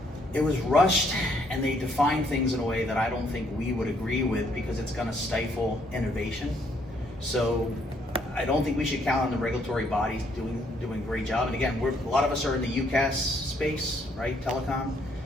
it was rushed and they defined things in a way that I don't think we would agree with because it's going to stifle innovation. So I don't think we should count on the regulatory bodies doing a great job. And again, a lot of us are in the UCAS space, right? Telecom.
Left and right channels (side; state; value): both; normal; correlation 0.69